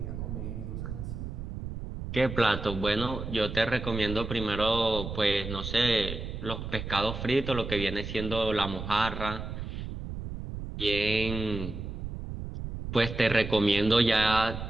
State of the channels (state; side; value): noise; right; rumble, 7 dB below the sound